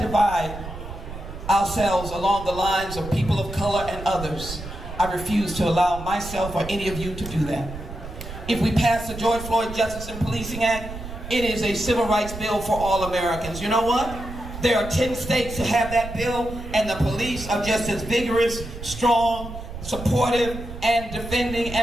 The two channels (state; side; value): noise; right; rumble, 10 dB below the sound